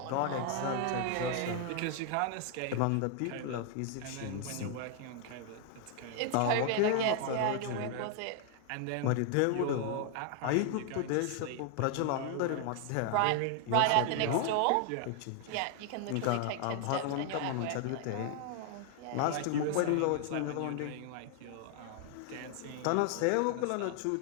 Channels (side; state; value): both; different; correlation 0.00